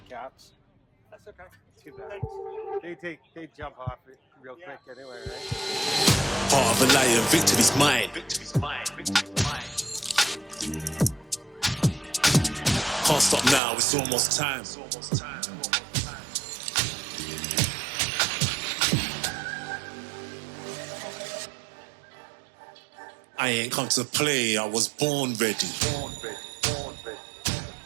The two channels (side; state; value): left; drops out; at 13.6 s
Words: cats. That's okay. Too bad. They jump off it real quick anyway, right? Heart of a lion, victory's mine. Can't stop now, it's almost time. I ain't come to play, I was born ready.